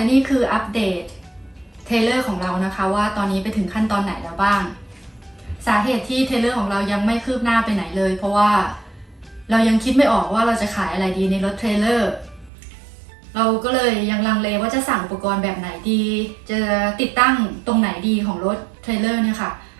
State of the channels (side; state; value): left; drops out; at 12.5 s